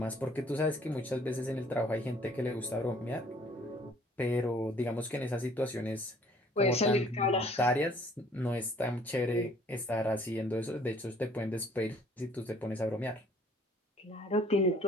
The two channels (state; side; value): normal; both; correlation 0.58